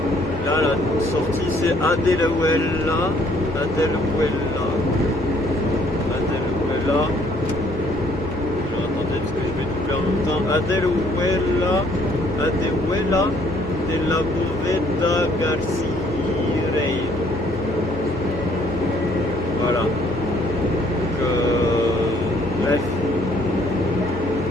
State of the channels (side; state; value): both; normal; correlation 0.64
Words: Là la sortie c'est Adeluela. Attendez parce que je vais doubler en même temps. Adeluela de la Boveda Garcia. Voilà. Bref.